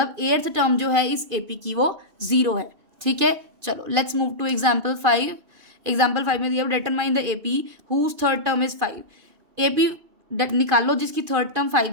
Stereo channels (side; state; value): left; late; 2.5 ms